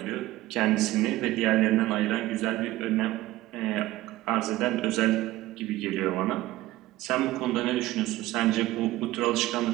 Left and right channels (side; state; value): left; quieter; 16.7 dB